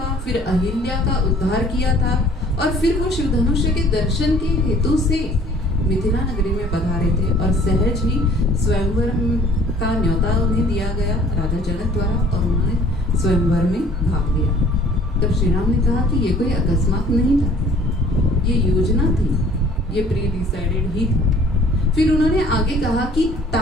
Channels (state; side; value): normal; both; correlation 0.54